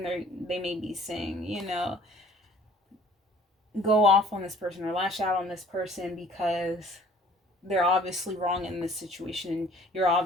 They may be saying, go off on this person or lash out on this person because they're obviously wrong in this situation and you're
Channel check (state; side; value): normal; both; correlation 0.54